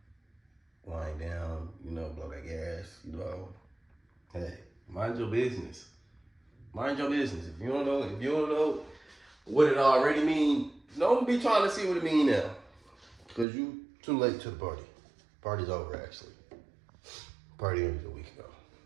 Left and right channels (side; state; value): left; drops out; at 13.5 s